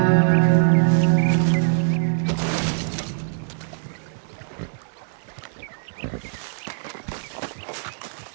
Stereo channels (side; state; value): left; silent; digital silence